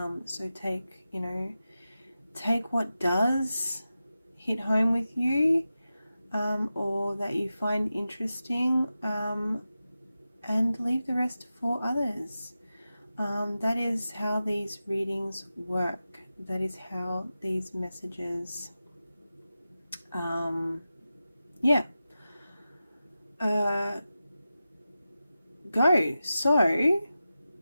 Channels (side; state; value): both; inverted; correlation -0.93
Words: So take, you know, take what does hit home with you, or that you find interesting, and leave the rest for others. That is how these readings work. That is how these messages, yeah, go. So,